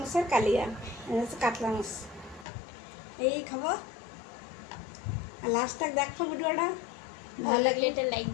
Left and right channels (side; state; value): right; drops out; at 2.5 s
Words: কালিয়া, এনে আছে কাতলা মাছ। এই খাবো। আর লাস্ট তক দেখো ভিডিওটা, ভালো লাগলে এটা লাইক